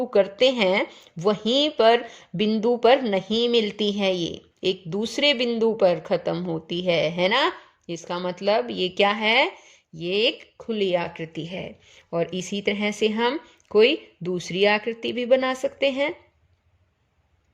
करते हैं, वहीं पर बिंदु पर नहीं मिलती है, ये एक दूसरे बिंदु पर खत्म होती है ना। इसका मतलब ये क्या है, ये एक खुली आकृति है। और इसी तरह से हम कोई दूसरी आकृति भी बना सकते हैं।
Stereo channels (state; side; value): identical; both; correlation 1.00